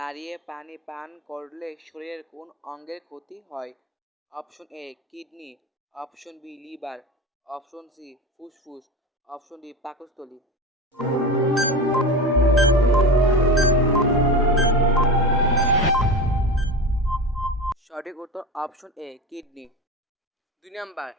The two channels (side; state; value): both; normal; correlation 0.26